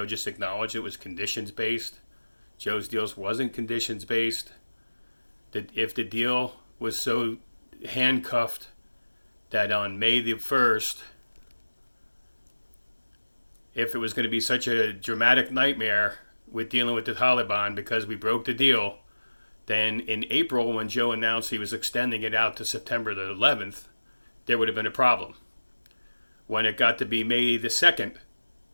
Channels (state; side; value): inverted; both; correlation -1.00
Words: just acknowledged it was conditions-based. Joe's deals wasn't conditions-based. That if the deal was so handcuffed that on May the 1st, if it was going to be such a dramatic nightmare with dealing with the Taliban because we broke the deal, then in April when Joe announced he was extending it out to September the 11th, there would have been a problem. When it got to be May the 2nd,